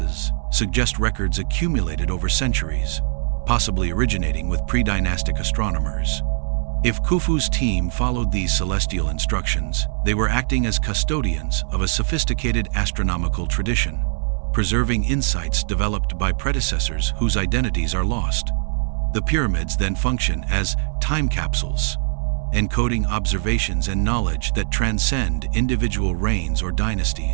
suggest records accumulated over centuries, possibly originating with pre-dynastic astronomers. If Khufu's team followed these celestial instructions, they were acting as custodians of a sophisticated astronomical tradition, preserving insights developed by predecessors whose identities are lost. The pyramids then function as time capsules, encoding observations and knowledge that transcend individual reigns or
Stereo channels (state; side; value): silent; left; digital silence